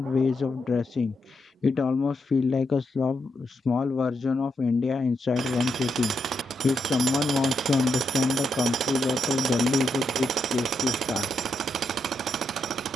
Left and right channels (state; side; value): normal; both; correlation 0.82